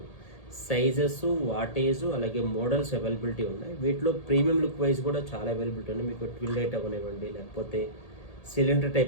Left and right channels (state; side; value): late; right; 1.8 ms